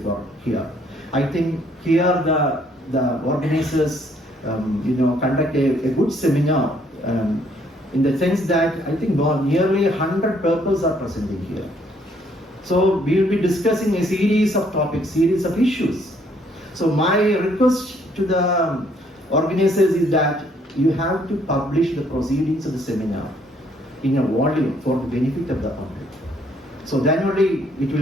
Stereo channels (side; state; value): both; normal; correlation 0.66